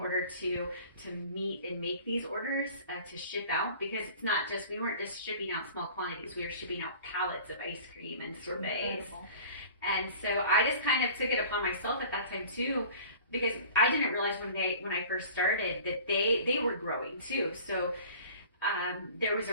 to meet and make these orders to ship out, because it's not just, we weren't just shipping out small quantities, we were shipping out pallets of ice cream and sorbets. Incredible. And so I just kind of took it upon myself at that time too, because I didn't realize when I first started that they were growing too. So there was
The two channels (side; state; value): both; inverted; correlation -0.44